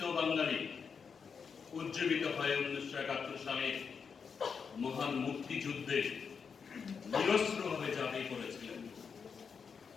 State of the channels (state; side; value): quieter; right; 6.1 dB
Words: বাঙালি উজ্জীবিত হয় 1971 সালে মহান মুক্তিযুদ্ধে নিরস্ত্রভাবে ঝাঁপিয়ে পড়েছিলেন।